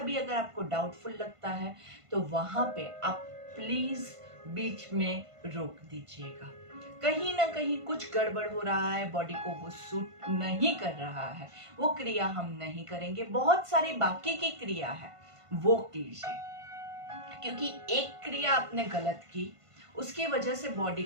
अगर आपको डाउटफुल लगता है, तो वहां पे आप प्लीज बीच में रोक दीजिएगा। कहीं ना कहीं कुछ गड़बड़ हो रहा है, बॉडी को वो सूट नहीं कर रहा है, वो क्रिया हम नहीं करेंगे। बहुत सारी बाकी की क्रिया है वो कीजिए, क्योंकि एक क्रिया आपने गलत की, उसकी वजह से बॉडी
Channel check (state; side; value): late; left; 1.5 ms